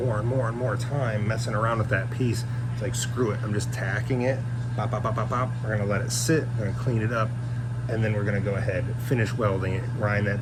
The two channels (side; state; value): both; identical; correlation 1.00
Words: and more and more time messing around with that piece, it's like, screw it, I'm just tacking it, pop, pop, pop, pop, pop. We're gonna let it sit, we're gonna clean it up, and then we're gonna go ahead, finish welding it, grind